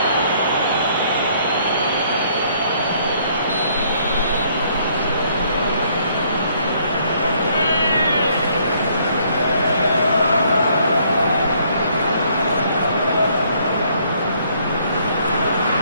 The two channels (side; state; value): both; inverted; correlation -0.65